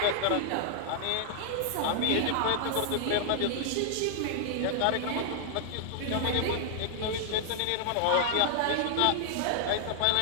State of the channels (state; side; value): different; both; correlation 0.00